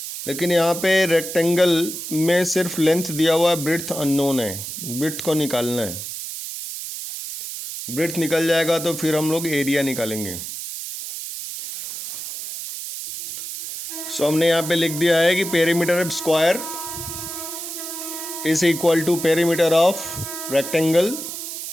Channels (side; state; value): right; noise; hiss, 7 dB below the sound